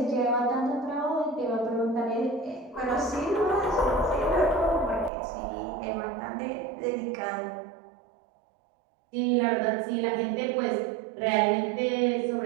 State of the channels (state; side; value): drops out; left; at 5.1 s